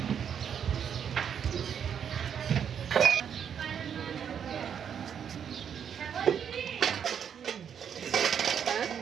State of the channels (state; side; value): quieter; left; 8.0 dB